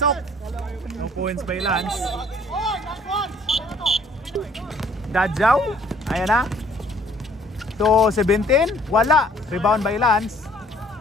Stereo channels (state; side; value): normal; both; correlation 0.59